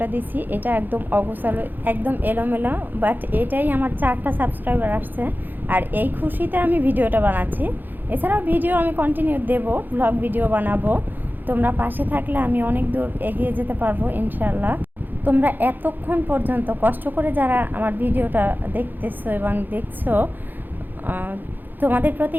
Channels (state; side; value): late; left; 0.089 ms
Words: দিছি, এটা একদম অগোছালো, একদম এলোমেলো, বাট এটাই আমার 4টা সাবস্ক্রাইবার আসছে। আর এই খুশিতে আমি ভিডিওটা বানাচ্ছি। এছাড়াও ভিডিও আমি কন্টিনিউ দেব, ব্লগ ভিডিও বানাবো। তোমরা পাশে থাকলে আমি অনেক দূর এগিয়ে যেতে পারবো ইনশাল্লাহ। তোমরা এতক্ষণ পর্যন্ত কষ্ট করে যারা আমার ভিডিওটা দেখতেছো এবং দেখছো, তোমাদের